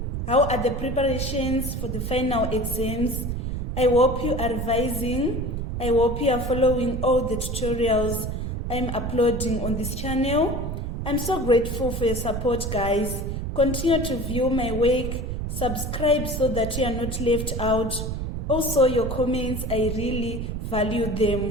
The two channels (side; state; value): right; noise; rumble, 3 dB below the sound